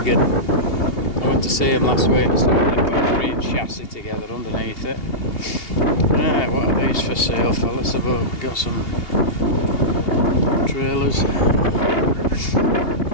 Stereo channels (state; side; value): late; right; 2.8 ms